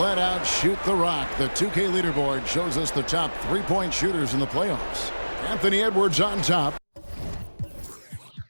out shoot the rock. The 2K leaderboard shows us the top 3-point shooters in the playoffs. Anthony Edwards on top.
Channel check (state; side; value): inverted; both; correlation -1.00